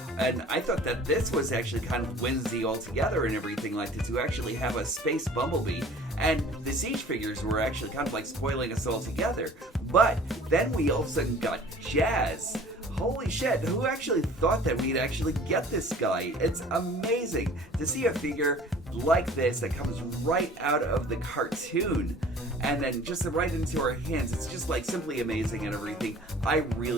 and I thought that this was actually kind of whimsy altogether and everything like that, to actually have a space Bumblebee, and the Siege figures were actually kind of like spoiling us all together. But then we all of a sudden got Jazz. Holy shit, who actually thought that we'd actually get this guy? It's amazing to see a figure like this that comes right out of the cartoon and then just right into our hands. It's just like simply amazing and everything. I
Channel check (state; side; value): normal; both; correlation 0.48